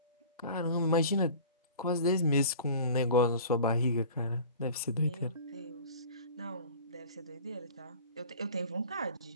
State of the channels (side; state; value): both; inverted; correlation -0.42